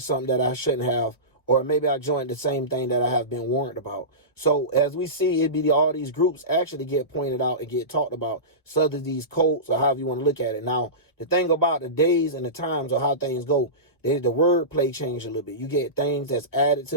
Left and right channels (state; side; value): late; right; 1.1 ms